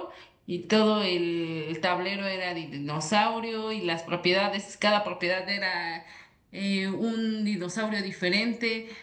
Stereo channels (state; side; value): identical; both; correlation 1.00